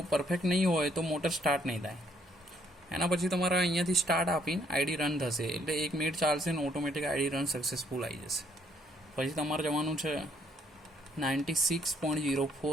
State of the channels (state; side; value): normal; both; correlation 0.67